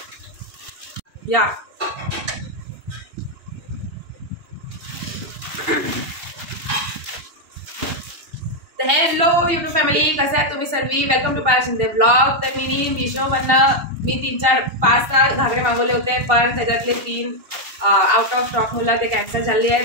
या तर हॅलो युट्यूब फॅमिली, कसे आहात तुम्ही सर्वी. Welcome to Payal Shinde blog. तर मी मीशोमधनं 3-4-5 घागरे मागवले होते, पण त्याच्यातले 3 आउट ऑफ स्टॉक मुलं ते कॅन्सल झाले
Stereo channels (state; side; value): late; left; 2.8 ms